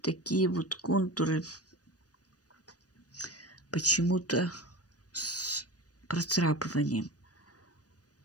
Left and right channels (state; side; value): late; right; 0.68 ms